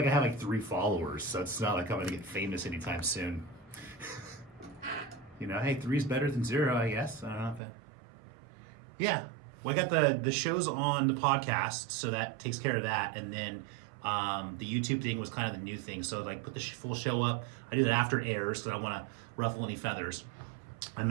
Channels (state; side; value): drops out; left; at 7.6 s